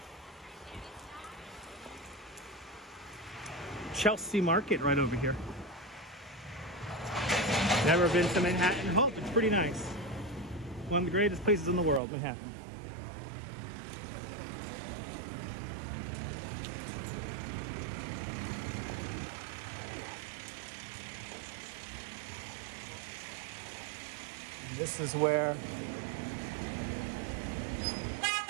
Chelsea Market right over here. Never been to Manhattan. Oh, it's pretty nice. One of the greatest places in the world, Manhattan. This is where,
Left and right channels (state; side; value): drops out; left; at 12.0 s